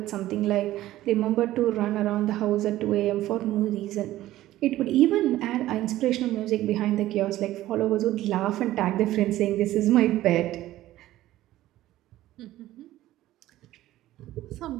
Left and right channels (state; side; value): quieter; left; 14.9 dB